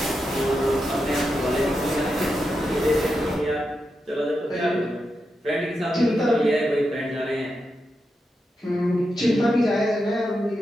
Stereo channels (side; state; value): both; normal; correlation 0.87